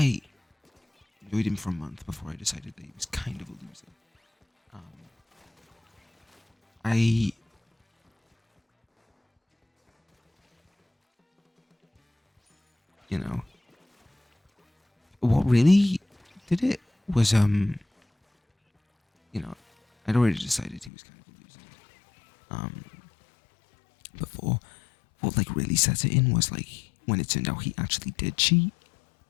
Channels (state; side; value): drops out; right; at 20.9 s